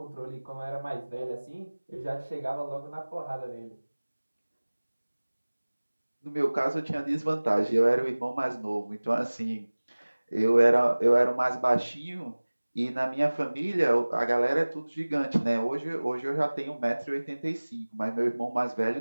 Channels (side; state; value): both; inverted; correlation -1.00